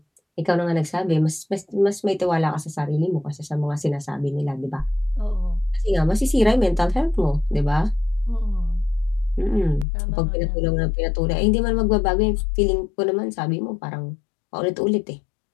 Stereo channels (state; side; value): drops out; right; at 9.9 s